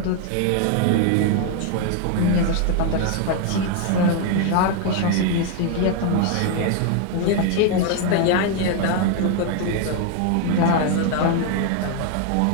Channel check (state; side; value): different; both; correlation 0.00